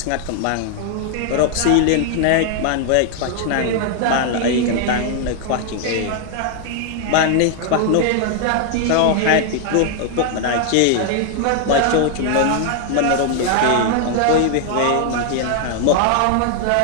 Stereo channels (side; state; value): both; different; correlation 0.00